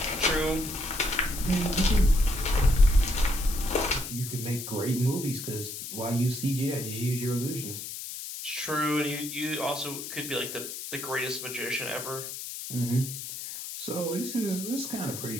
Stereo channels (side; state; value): left; noise; hiss, 8 dB below the sound